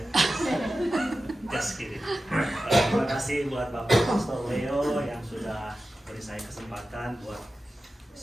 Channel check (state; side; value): normal; both; correlation 0.94